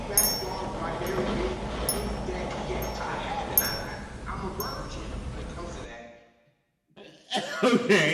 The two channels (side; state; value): both; identical; correlation 1.00